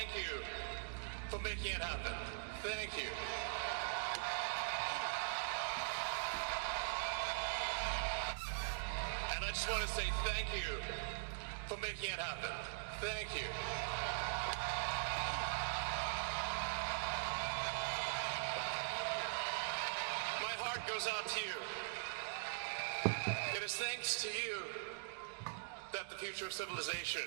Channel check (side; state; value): left; silent; digital silence